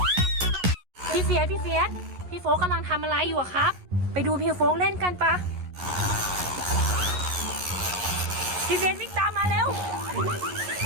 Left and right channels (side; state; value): left; late; 11 ms